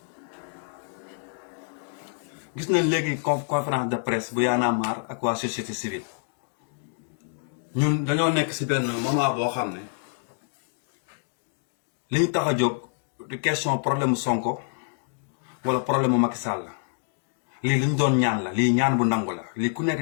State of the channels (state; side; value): silent; right; digital silence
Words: Gis nañ léegi conférence de presse bu Y'en a marre ak waa société civile. Ñun dañoo nekk ci benn moment boo xam ne li ñu tax a jóg du question problème Sonko wala problème Macky Sall lii li ñu doon ñaan la lii ñaan bu nangu la lii ku nekk